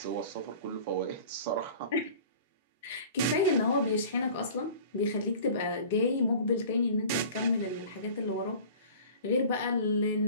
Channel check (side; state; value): both; inverted; correlation -0.43